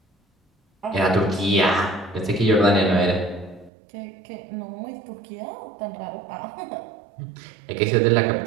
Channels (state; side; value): drops out; left; at 3.7 s